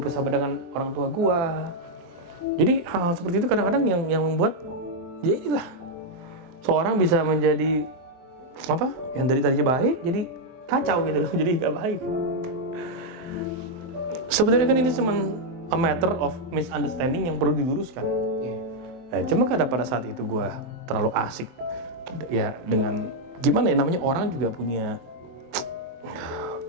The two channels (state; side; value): late; left; 23 ms